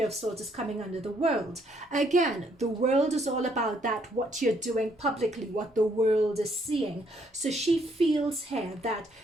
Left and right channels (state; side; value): normal; both; correlation 0.69